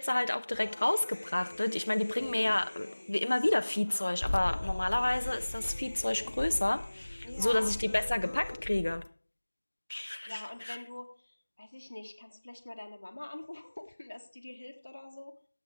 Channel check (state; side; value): inverted; both; correlation -1.00